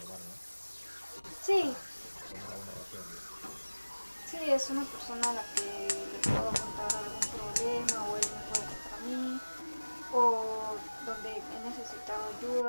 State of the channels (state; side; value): inverted; both; correlation -1.00